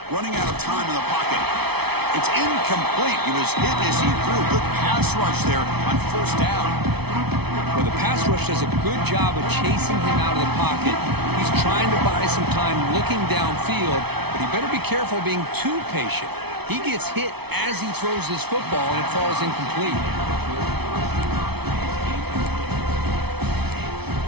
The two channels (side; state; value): left; late; 0.98 ms